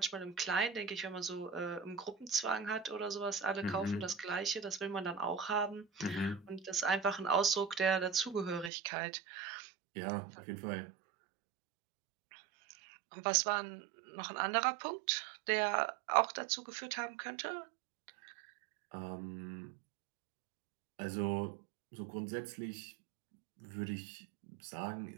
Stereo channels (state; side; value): drops out; left; at 8.7 s